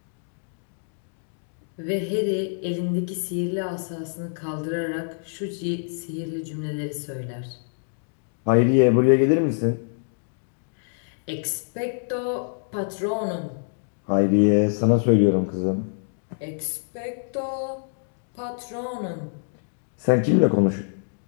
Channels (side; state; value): right; silent; digital silence